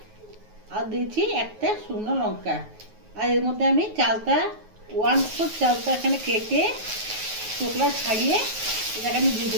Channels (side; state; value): left; late; 9.4 ms